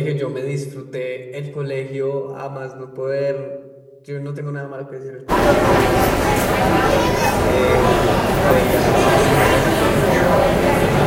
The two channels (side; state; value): both; identical; correlation 1.00